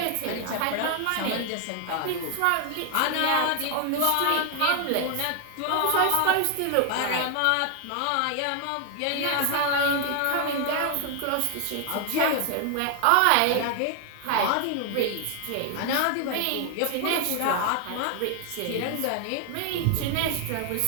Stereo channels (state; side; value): different; both; correlation 0.00